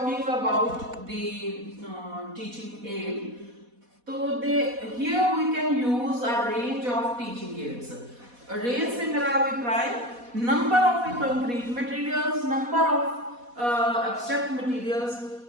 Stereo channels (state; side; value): late; left; 4.1 ms